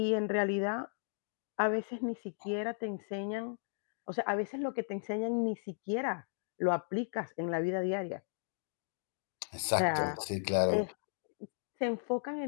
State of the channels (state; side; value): silent; right; digital silence